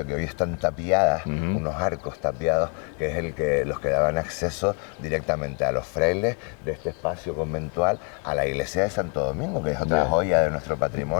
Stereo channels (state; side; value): quieter; right; 35.9 dB